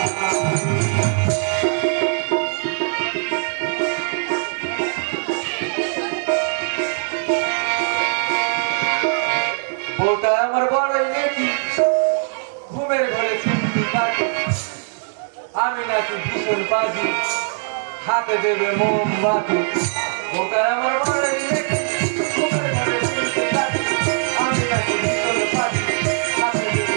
বউটা আমার বড়ই নেকি, ঘুমের ঘরে চিমটি কাটি, আমি নাকি ভীষণ বাজি, হাতে দেবে মোমবাতি। বউটা আমার বড়ই নেকি, ঘুমের ঘরে চিমটি কাটি, আমি নাকি ভীষণ বাজি, হাতে দেবে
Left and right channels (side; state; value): left; silent; digital silence